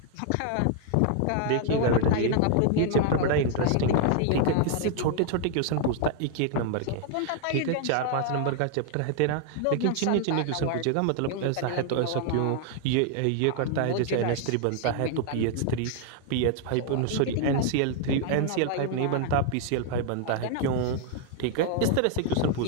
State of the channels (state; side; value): different; both; correlation 0.00